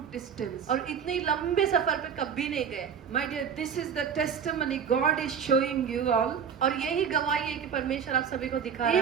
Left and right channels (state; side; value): quieter; left; 7.4 dB